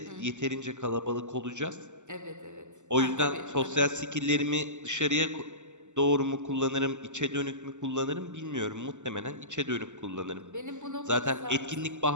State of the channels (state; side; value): late; left; 0.84 ms